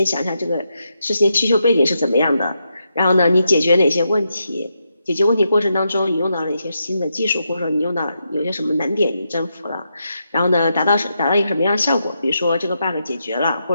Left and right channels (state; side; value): inverted; both; correlation -0.83